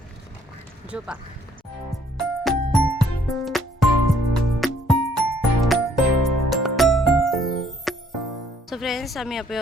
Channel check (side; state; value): both; normal; correlation 0.64